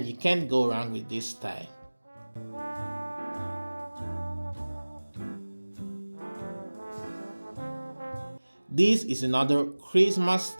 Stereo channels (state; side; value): inverted; both; correlation -1.00